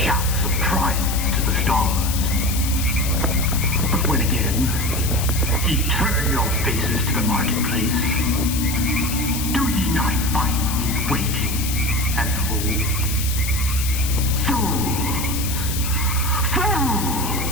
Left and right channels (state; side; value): noise; left; hiss, 5 dB below the sound